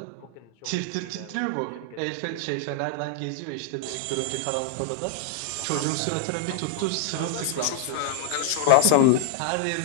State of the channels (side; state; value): both; different; correlation -0.01